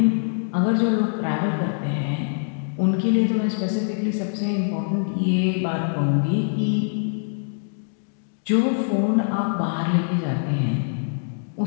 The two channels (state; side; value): silent; right; digital silence